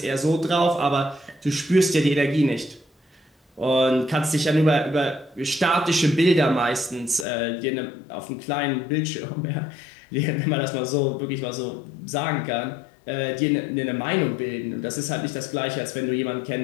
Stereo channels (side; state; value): right; drops out; at 7.2 s